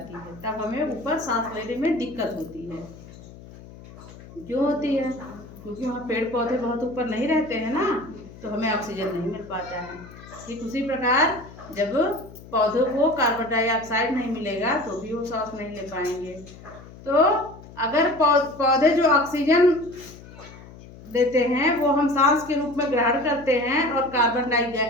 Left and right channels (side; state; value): left; noise; hum, 18 dB below the sound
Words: है। तब हमें ऊपर सांस लेने में दिक्कत होती है। क्यों होती है? क्योंकि वहाँ पेड़ पौधे बहुत ऊपर नहीं रहते हैं ना, तो हमें ऑक्सीजन नहीं मिल पाता है। ठीक उसी प्रकार जब पौधों को कार्बन डाइऑक्साइड नहीं मिलेगा तो भी वो सांस नहीं ले पाएंगे। तो अगर पौधे जो ऑक्सीजन देते हैं वो हम सांस के रूप में ग्रहण करते हैं और कार्बन